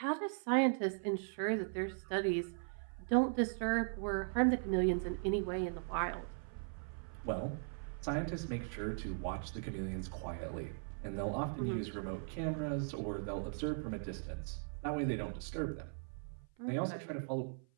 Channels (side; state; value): left; silent; 52 dB below the other